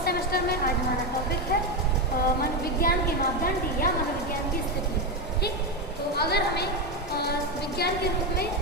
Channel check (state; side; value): normal; both; correlation 0.12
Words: सेमेस्टर में आज हमारा टॉपिक है मनोविज्ञान के मापदंड या मनोविज्ञान की स्थिति। ठीक, तो अगर हमें विज्ञान के रूप में